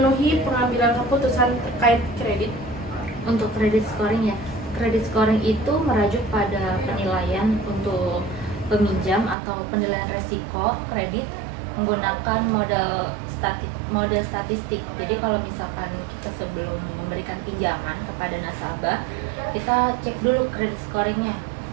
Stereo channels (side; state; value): left; drops out; at 9.3 s